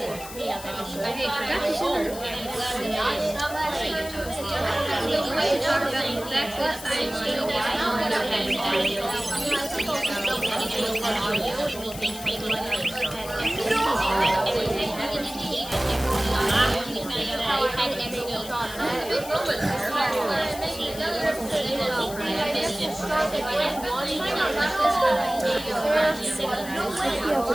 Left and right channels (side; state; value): left; noise; hiss, 13 dB below the sound